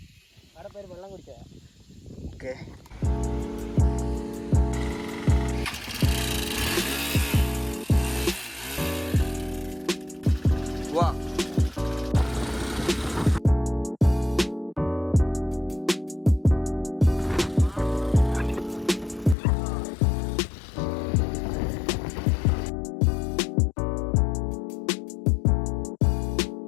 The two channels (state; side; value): drops out; right; at 19.4 s